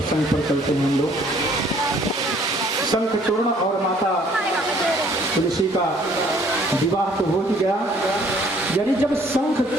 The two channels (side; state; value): both; normal; correlation 0.60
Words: पर चलते हैं हम लोग। शंखचूर्ण और माता तुलसी का विवाह तो हो ही गया। यानी जब